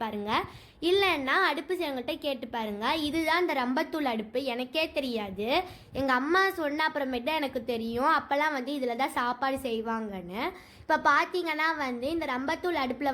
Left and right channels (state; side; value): identical; both; correlation 1.00